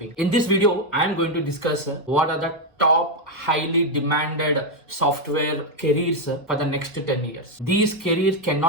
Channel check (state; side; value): normal; both; correlation 0.03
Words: In this video, I am going to discuss what are the top highly demanded software careers for the next 10 years. These careers